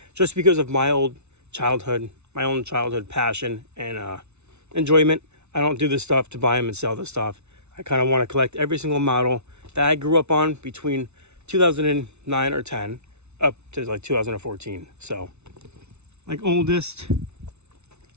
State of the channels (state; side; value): late; left; 0.81 ms